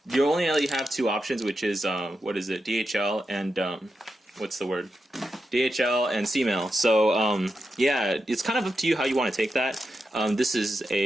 you only really have two options, which is, what is it, DHL and, what's the word? DHL and C-mail. So, yeah, it's kind of up to you how you want to take that. This is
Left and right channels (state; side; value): normal; both; correlation 0.88